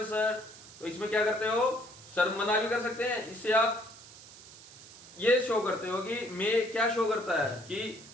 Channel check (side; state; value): right; noise; hiss, 18 dB below the sound